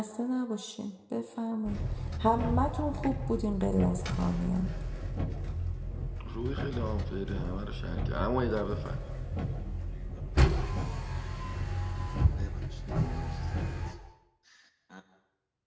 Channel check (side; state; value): both; identical; correlation 1.00